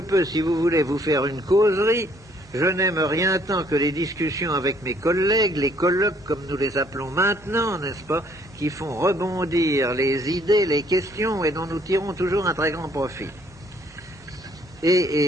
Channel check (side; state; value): both; normal; correlation 0.64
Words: si vous voulez, vous faire une causerie. Je n'aime rien tant que les discussions avec mes collègues, les colloques, comme nous les appelons maintenant, n'est-ce pas, qui font rebondir les idées, les questions, et dont nous tirons toujours un très grand profit.